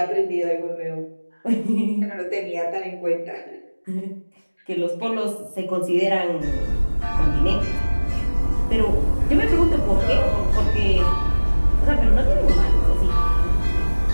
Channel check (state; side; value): inverted; both; correlation -1.00